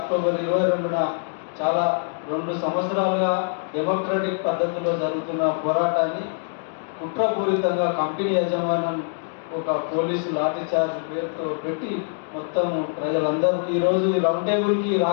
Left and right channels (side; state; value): right; silent; digital silence